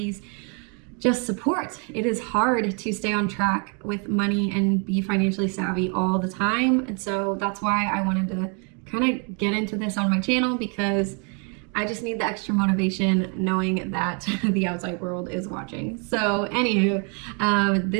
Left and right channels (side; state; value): left; quieter; 37.2 dB